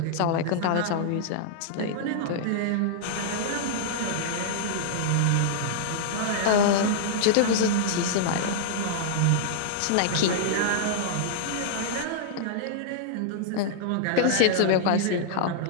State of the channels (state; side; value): different; both; correlation -0.02